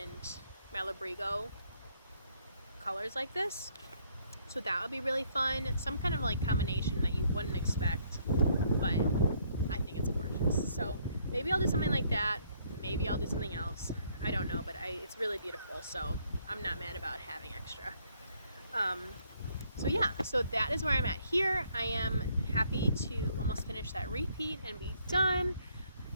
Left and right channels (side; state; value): both; inverted; correlation -0.68